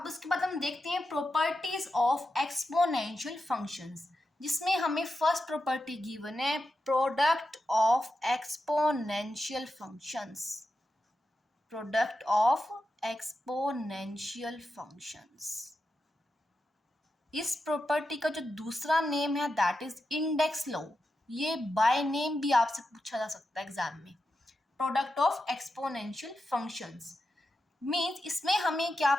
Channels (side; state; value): both; normal; correlation 0.89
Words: उसके बाद हम देखते हैं प्रॉपर्टीज ऑफ एक्सपोनेंशियल फंक्शंस, जिसमें हमें फर्स्ट प्रॉपर्टी गिवन है product of exponential functions. Product of exponential functions. इस प्रॉपर्टी का जो दूसरा नेम है दैट इज इंडेक्स लॉ। ये बाय नेम भी आपसे पूछा जा सकता है एग्जाम में। Product of exponential functions means इसमें हमें क्या